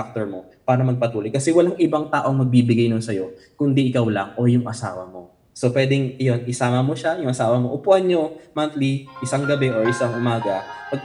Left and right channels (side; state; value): both; identical; correlation 1.00